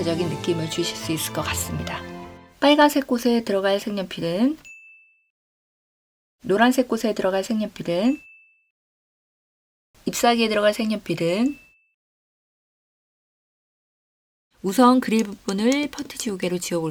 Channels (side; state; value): both; identical; correlation 1.00